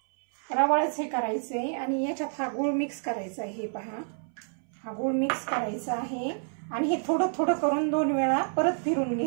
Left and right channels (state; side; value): silent; left; 59 dB below the other